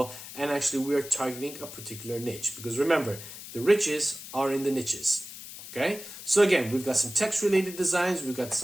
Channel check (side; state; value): left; noise; hiss, 13 dB below the sound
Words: and actually we are targeting a particular niche. Because remember, the riches are in the niches. Okay, so again, we've got some text-related designs, we've got